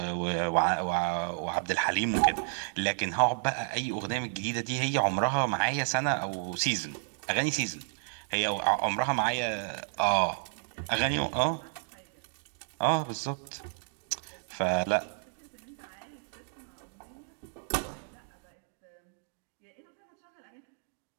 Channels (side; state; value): left; silent; digital silence